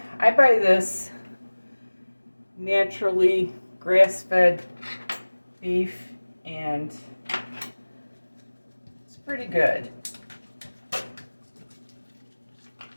I buy this naturally grass-fed beef, and it's pretty good.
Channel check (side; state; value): both; inverted; correlation -1.00